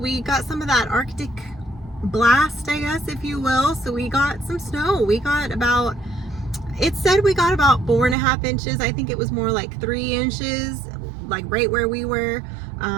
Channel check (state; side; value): drops out; left; at 8.2 s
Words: got some of that Arctic blast, I guess, if you will. So we got some snow. It said we got about 4.5 inches. I think it was more like 3 inches, like right where we were.